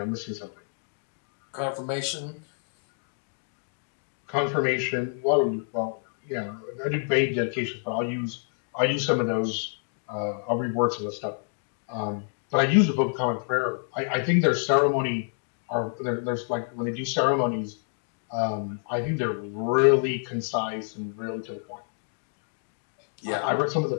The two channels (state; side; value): silent; right; 59 dB below the other